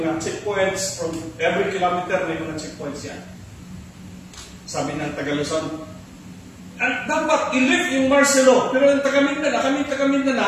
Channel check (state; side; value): identical; both; correlation 1.00